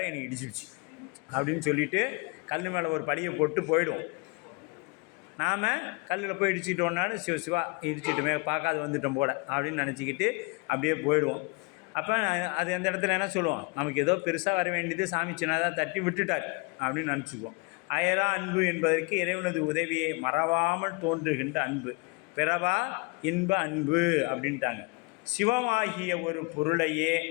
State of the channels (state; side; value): quieter; right; 29.5 dB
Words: எனக்கு இடிச்சிடுச்சு அப்படின்னு சொல்லிவிட்டு கல் மேலே ஒரு படியை போட்டு போயிடுவோம். நாம் கல்லில் போய் இடிச்சிட்டோன்னாலும் சிவா இடிச்சிட்டுமே பார்க்காது வந்துட்டோம் போல அப்படின்னு நினச்சிக்கிட்டு அப்படியே போயிடுவோம். அப்போ அது அந்த இடத்துல என்ன சொல்லுவோம், நமக்கு ஏதோ பெருசாக வர வேண்டியது சாமி சின்னதாக தட்டி விட்டுட்டார் அப்படின்னு நினச்சிக்குவோம். அயரா அன்பு என்பதற்கு இறைவனது உதவியை மறவாமல் தோன்றுகின்ற அன்பு, பிறவா இன்ப அன்பு அப்படின்ட்டாங்க. சிவமாகிய ஒரு பொருளையே